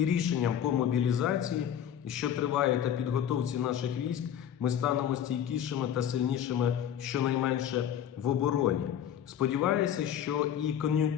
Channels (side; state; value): right; quieter; 9.8 dB